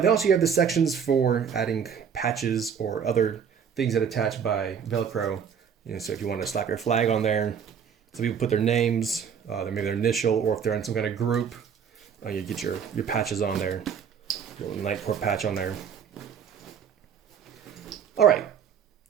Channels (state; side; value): quieter; left; 7.4 dB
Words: then also you have the sections for adding patches or other things that attach by Velcro. You know, so if you want to slap your flag on there, some people put their names, maybe their initial, or if they're in some kind of group, you get your patches on there, your little Nitecore patch on there. All right,